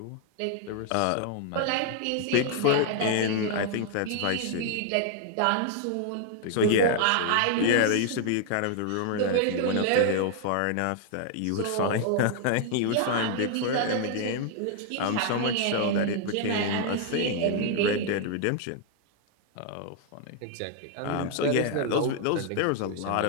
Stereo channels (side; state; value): both; different; correlation 0.00